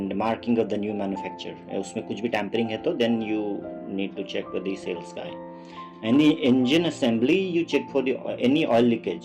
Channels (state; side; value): identical; both; correlation 1.00